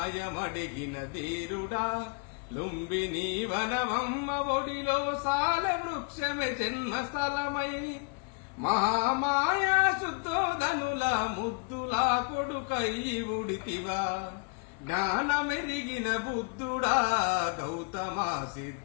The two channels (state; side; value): quieter; right; 34.7 dB